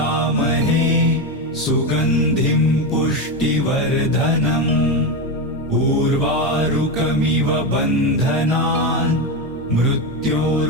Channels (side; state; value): both; normal; correlation 0.13